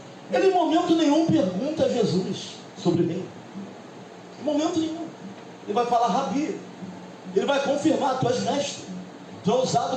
Ele em momento nenhum pergunta a Jesus sobre o reino. Em momento nenhum. Ele vai falar rabi. Ele vai confirmar, tu és mestre, tu é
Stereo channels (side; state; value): both; identical; correlation 1.00